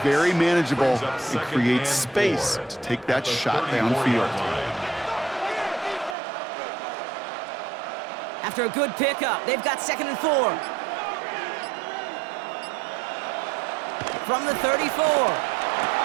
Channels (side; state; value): left; drops out; at 6.2 s